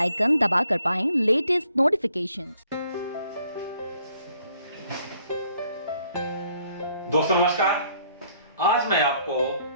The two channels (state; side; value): inverted; both; correlation -0.65